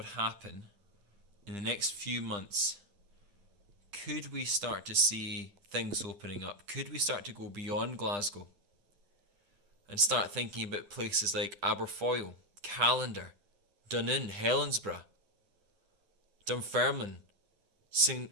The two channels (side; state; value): left; late; 10 ms